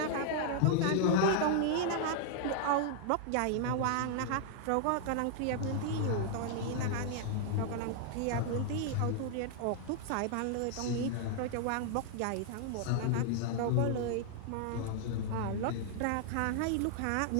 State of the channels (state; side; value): different; both; correlation -0.01